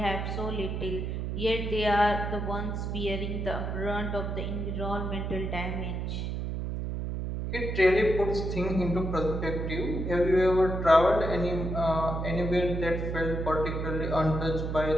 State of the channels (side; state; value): right; noise; hum, 3 dB below the sound